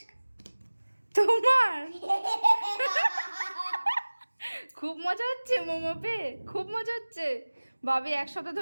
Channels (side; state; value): both; inverted; correlation -1.00